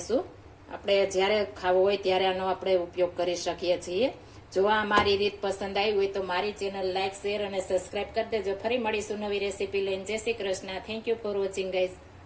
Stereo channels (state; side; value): identical; both; correlation 1.00